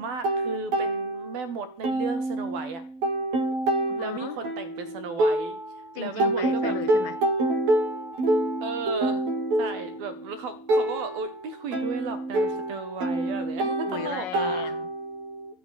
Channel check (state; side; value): late; left; 12 ms